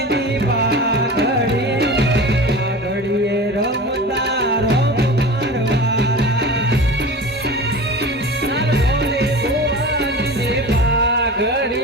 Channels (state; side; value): normal; both; correlation 0.33